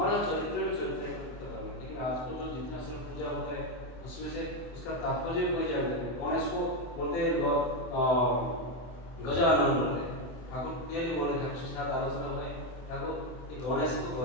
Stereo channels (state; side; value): late; right; 24 ms